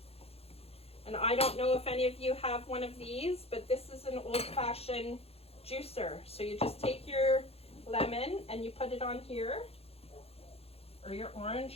And I don't know if any of you have one of these, but this is an old-fashioned juicer. So you just take your lemon and you put it on here, or your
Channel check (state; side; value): late; right; 0.29 ms